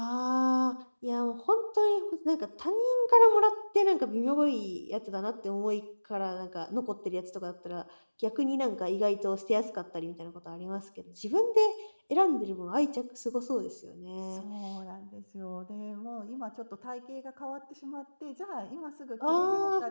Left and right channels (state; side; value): inverted; both; correlation -1.00